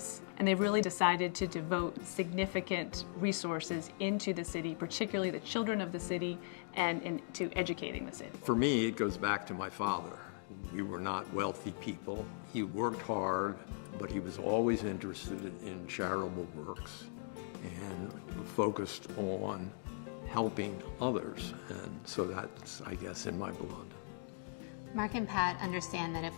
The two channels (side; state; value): right; silent; digital silence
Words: and they've really decided to devote significant resources into the city, particularly the children of the city, and into educating the city. For me, it goes back to my father. We were not wealthy people. He worked hard, but he was always interested in charitable works and focused on helping others, and so that's, I guess, in my blood. Mark and Pat understand that